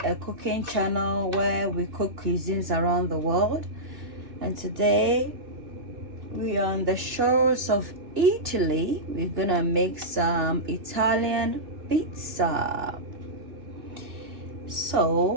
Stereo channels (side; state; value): left; late; 2.7 ms